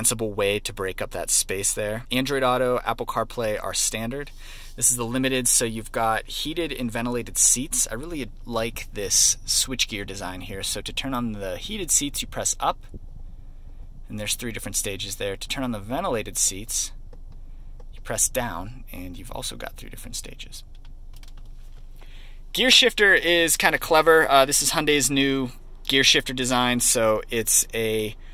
way to break up that space there. Android Auto, Apple CarPlay are standard. This is the limited, so you've got heated and ventilated seats. I really like this switchgear design here. So to turn on the heated seats, you press up, and there's 3 different stages there. To turn on the ventilated seats, you press down, and you've also got 3 different stages. Gear shifter is kind of clever. This is Hyundai's new gear shifter design, so it's a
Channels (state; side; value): identical; both; correlation 1.00